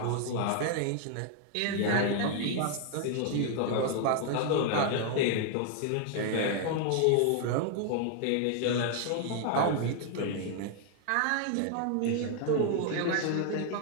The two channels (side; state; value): both; different; correlation 0.00